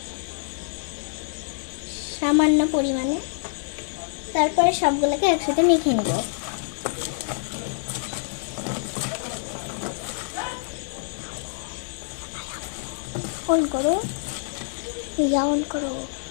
সামান্য পরিমাণে। তারপরে সবগুলোকে একসাথে মেখে নেব। অন করো, অন করো,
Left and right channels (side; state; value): right; silent; 61 dB below the other